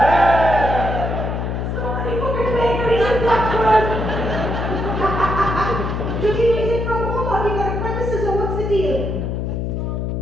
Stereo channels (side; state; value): left; noise; hum, 2 dB below the sound